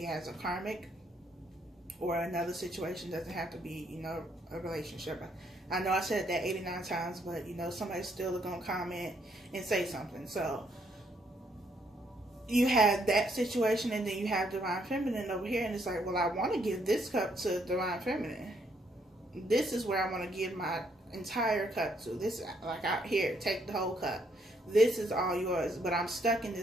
has a karmic or another situation. Doesn't have to be, you know, a relationship. I know I said that 89 times, but, you know, somebody's still going to comment and say something. So you have that situation, and then you have divine feminine over here, and it's like, well, I want to give this cup to divine feminine. This is where I want to give my entire cup to. This, like, out here, take the whole cup. This is all yours, but I'm stuck in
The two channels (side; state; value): both; normal; correlation 0.72